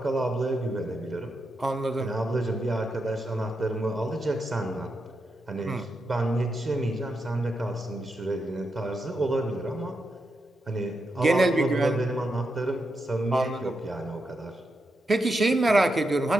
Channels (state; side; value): normal; both; correlation 0.85